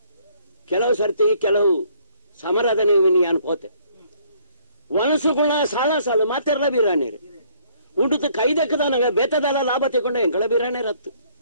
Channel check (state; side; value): inverted; both; correlation -0.63